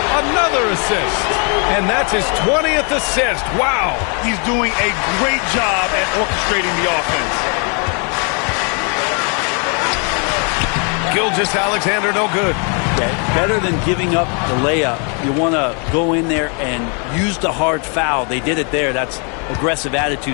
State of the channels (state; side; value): quieter; right; 37.7 dB